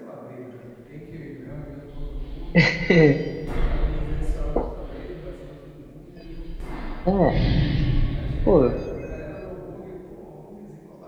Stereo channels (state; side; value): identical; both; correlation 1.00